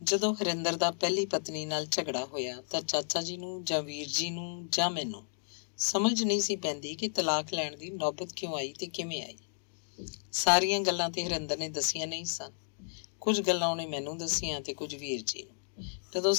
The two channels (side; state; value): right; silent; digital silence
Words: ਜਦੋਂ ਹਰਿੰਦਰ ਦਾ ਪਹਿਲੀ ਪਤਨੀ ਨਾਲ ਝਗੜਾ ਹੋਇਆ ਤਾਂ ਚਾਚਾ ਜੀ ਨੂੰ ਜਾਂ ਵੀਰ ਜੀ ਨੂੰ ਜਾਂ ਮੈਨੂੰ ਸਮਝ ਨਹੀਂ ਸੀ ਪੈਂਦੀ ਕਿ ਤਲਾਕ ਲੈਣ ਦੀ ਨੌਬਤ ਕਿਉਂ ਆਈ ਤੇ ਕਿਵੇਂ ਆਈ। ਸਾਰੀਆਂ ਗੱਲਾਂ ਤੇ ਹਰਿੰਦਰ ਨੇ ਦੱਸੀਆਂ ਨਹੀਂ ਸਨ। ਕੁਝ ਗੱਲਾਂ ਉਹਨੇ ਮੈਨੂੰ ਦੱਸੀਆਂ ਤੇ ਕੁਝ ਵੀਰ ਜੀ ਨੂੰ। ਜਦੋਂ